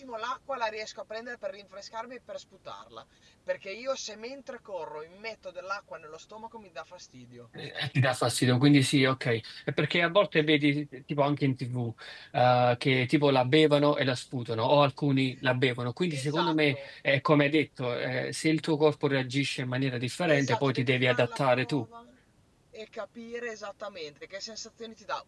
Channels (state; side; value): identical; both; correlation 1.00